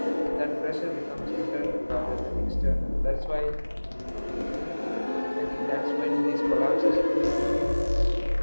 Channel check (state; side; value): inverted; both; correlation -1.00